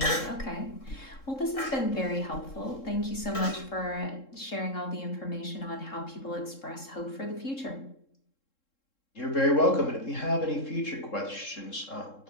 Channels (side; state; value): right; late; 3.7 ms